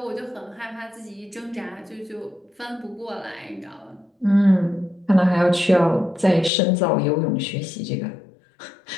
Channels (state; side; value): drops out; right; at 6.5 s